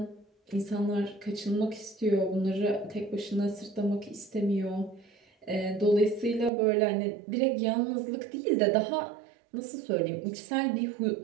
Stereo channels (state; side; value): drops out; left; at 6.5 s